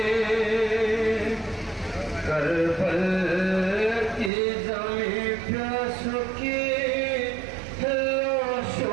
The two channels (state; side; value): drops out; left; at 4.3 s